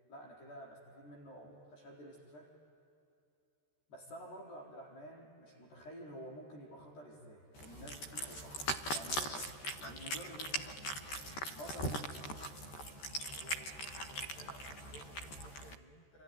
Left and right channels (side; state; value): right; late; 13 ms